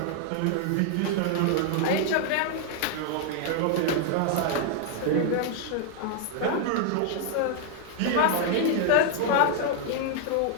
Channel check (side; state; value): both; different; correlation 0.00